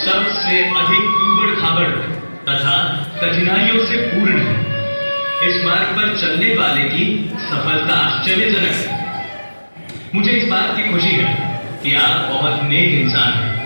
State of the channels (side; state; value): both; inverted; correlation -1.00